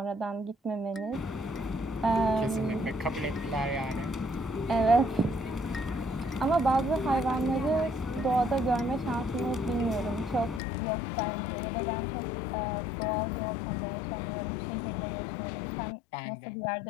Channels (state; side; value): drops out; right; at 10.6 s